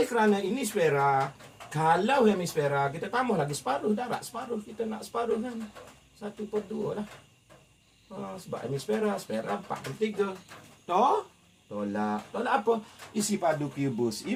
kerana ini sfera, kalau hemisfera kita tambah lagi separuh, darat separuh. Kita nak separuh kan? 1/2 lah. Sebab hemisfera, sfera 4/3. Tolak apa? Isi padu kubus.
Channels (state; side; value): identical; both; correlation 1.00